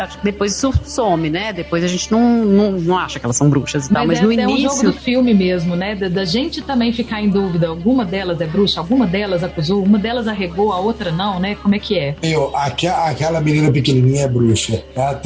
some, né? Depois a gente não acha que elas são bruxas e tal, mas no início... É um jogo do filme mesmo, né? Da gente também ficar em dúvida, alguma delas é bruxa, alguma delas acusou, uma delas arregou, a outra não, né? Como é que é? Aquela menina pequenininha é bruxa. Ela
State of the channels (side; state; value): both; identical; correlation 1.00